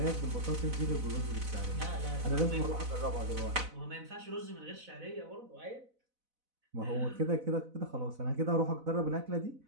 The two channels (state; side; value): late; left; 4.0 ms